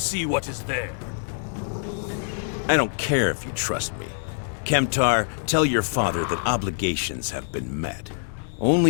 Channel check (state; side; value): silent; right; digital silence